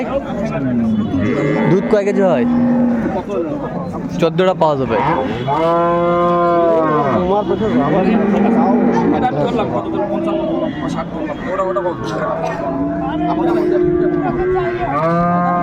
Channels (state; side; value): identical; both; correlation 1.00